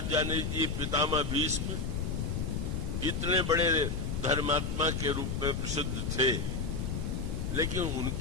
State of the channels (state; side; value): noise; left; rumble, 1 dB below the sound